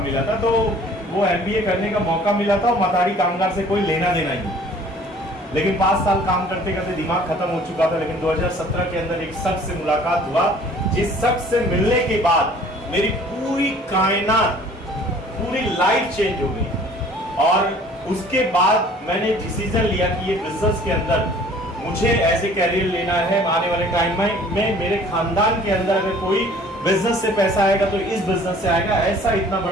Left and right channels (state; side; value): normal; both; correlation 0.52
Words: था, तो वो एमबीए करने का मौका मिला था और मथाड़ी कामगार से कोई लेना देना ही नहीं। लेकिन 5 साल काम करते करते दिमाग खत्म हो चुका था। लेकिन 2017 के अंदर एक शख्स से मुलाकात हुआ, जिस शख्स से मिलने के बाद मेरी पूरी कायनात, पूरी लाइफ चेंज हो गई। और उसके बाद मैंने डिसीजन लिया कि ये बिजनेस के अंदर मुझे ऐसे कैरियर लेना है। आने वाले टाइम में मेरे खानदान के अंदर अगर कोई बिजनेस से पैसा आएगा तो इस बिजनेस से आएगा। ऐसा इतना